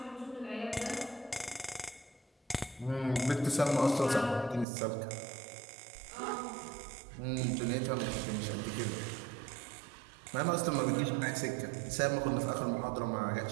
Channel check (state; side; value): drops out; left; at 4.7 s